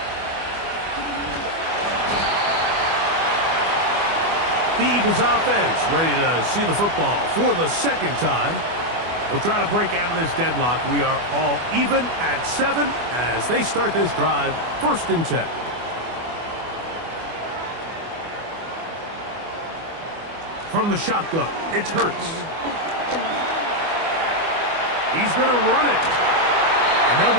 The Eagles offense ready to see the football for the second time. We'll try to break out of this deadlock. We are all even at 7 as they start this drive, 1st and 10. From the shotgun, it's Hurts. He's going to run it. And they'll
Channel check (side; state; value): left; late; 24 ms